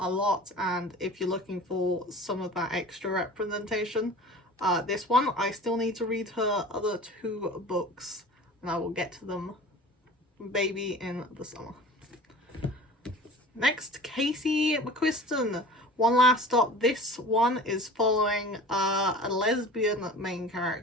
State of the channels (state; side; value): normal; both; correlation 0.40